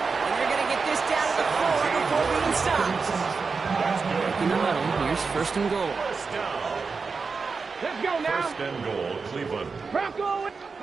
And they're going to get this down to the 4 before being stopped. In the huddle, here's 1st and goal. First down. Let's go now. 1st and goal, Cleveland. Bronco.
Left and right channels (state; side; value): quieter; left; 4.8 dB